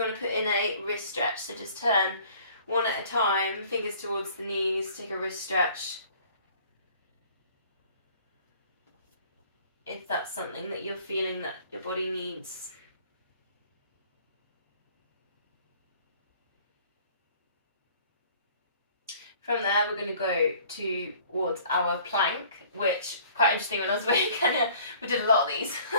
want to put in a wrist stretch, so just turn one at a time, fingers towards the knees, take a wrist stretch. If that's something that you're feeling that your body needs. From there, we're going to go towards our plank, which quite interesting. When I was away in Kenya, we did a lot of these.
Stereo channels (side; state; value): both; inverted; correlation -0.53